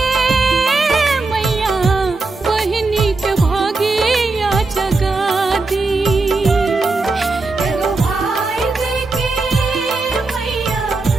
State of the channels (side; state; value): left; quieter; 3.6 dB